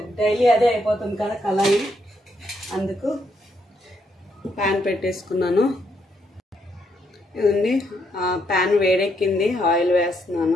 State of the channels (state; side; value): normal; both; correlation 0.76